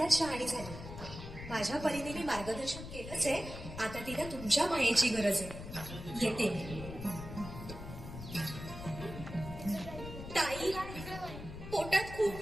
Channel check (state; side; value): noise; left; rumble, 10 dB below the sound